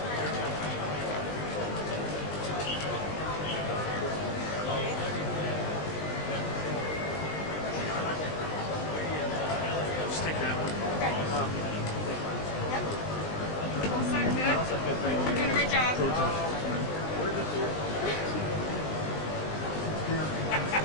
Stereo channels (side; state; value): right; late; 20 ms